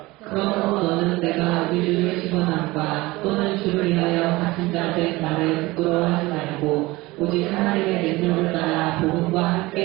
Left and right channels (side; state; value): left; quieter; 20.9 dB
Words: 그러므로 너는 내가 우리를 시원함과 또는 주를 위하여 갇힌 자된 나를 부끄러워하지 말고 오직 하나님의 능력을 따라 복음과